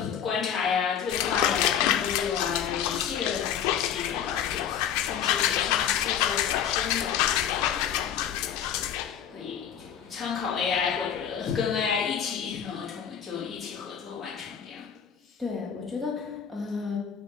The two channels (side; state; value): right; quieter; 8.8 dB